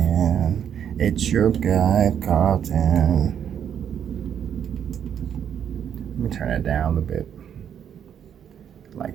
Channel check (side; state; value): left; quieter; 8.8 dB